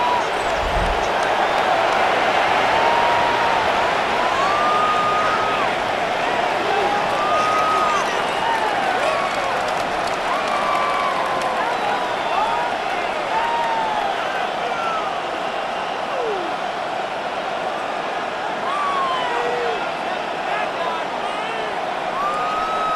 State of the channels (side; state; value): both; identical; correlation 1.00